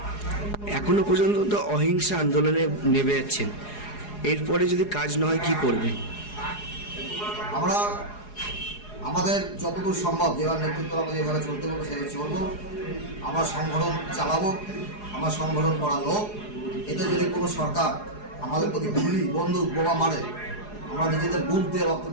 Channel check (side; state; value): right; late; 4.8 ms